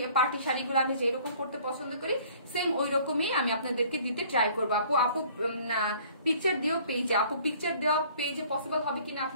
পার্টি শাড়িগুলো আমি যেরকম পড়তে পছন্দ করি সেম ওই রকমই আমি আপনাদেরকে দিতে ট্রাই করবো। আপু পিকচার দিও পেজে, আপু পিকচার দেওয়া পেজে পসিবল হবে কিনা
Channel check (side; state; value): both; inverted; correlation -0.54